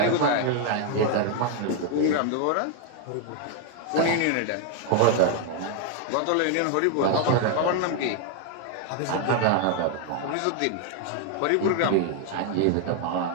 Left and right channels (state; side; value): different; both; correlation 0.00